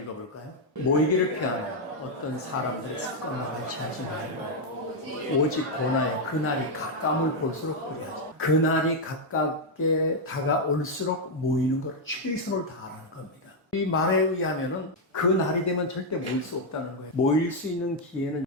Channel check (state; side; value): normal; both; correlation 0.00